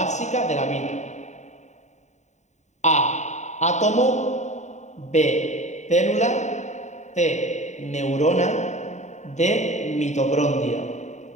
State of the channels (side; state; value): right; late; 0.34 ms